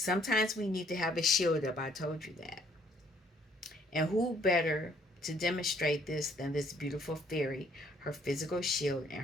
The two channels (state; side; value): normal; both; correlation 0.64